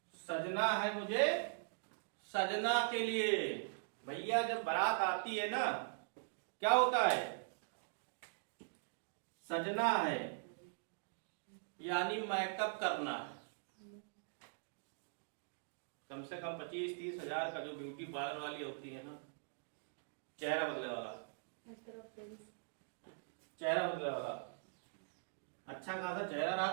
सजना है मुझे सजना के लिए। भैया जब बारात आती है ना, क्या होता है, सजना है यानी मेकअप करना। कम से कम 25-30 हजार का जो ब्यूटी पार्लर वाली होती है ना, चेहरा बदले वाला, चेहरा बदले वाला, अच्छा खासा चेहरा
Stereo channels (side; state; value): left; silent; digital silence